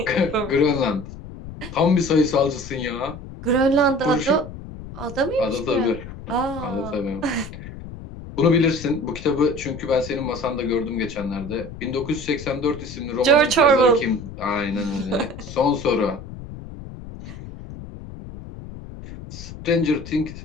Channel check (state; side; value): noise; left; rumble, 13 dB below the sound